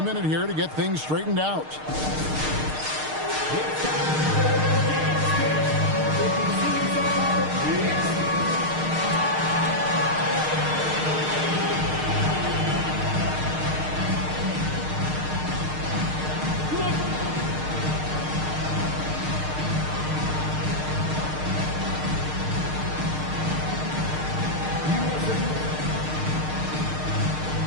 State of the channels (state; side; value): late; left; 6.5 ms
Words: minute here to get things straightened out.